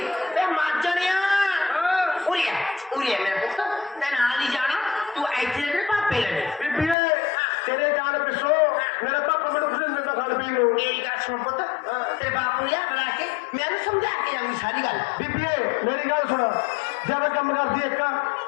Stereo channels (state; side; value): drops out; right; at 7.0 s